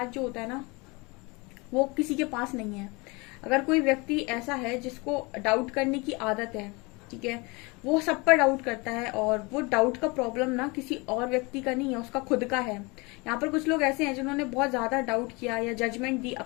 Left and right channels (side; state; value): right; quieter; 26.9 dB